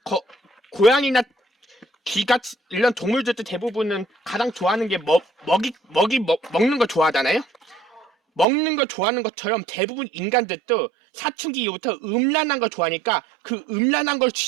고양이나 쥐같이 이런 동물들도 대부분은 가장 좋아하는 게 먹는 거 좋아하잖아요. 먹는 거 좋아하는 것처럼 대부분 인간들도 사춘기 이후부터 음란한 걸 좋아하니까 그 음란한 걸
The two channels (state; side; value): drops out; left; at 8.5 s